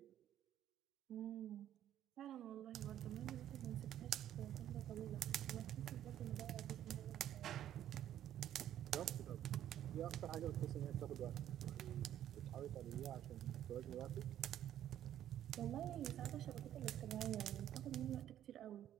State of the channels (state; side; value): quieter; left; 11.3 dB